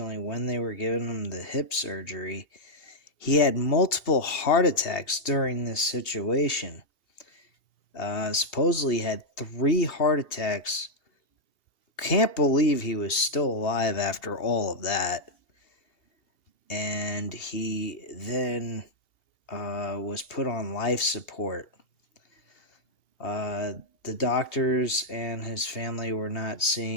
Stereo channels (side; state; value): right; late; 2.8 ms